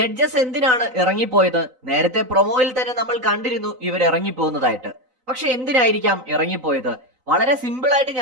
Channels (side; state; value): left; late; 3.9 ms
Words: എന്തിനാണ് ഇറങ്ങിപ്പോയത്? നേരത്തെ പ്രൊമോയിൽ തന്നെ നമ്മൾ കണ്ടിരുന്നു ഇവർ ഇറങ്ങിപ്പോകുന്നതായിട്ട്. പക്ഷെ എന്തിനായിരിക്കാം ഇറങ്ങിപ്പോയത്? വളരെ സിമ്പിൾ ആയിട്ട്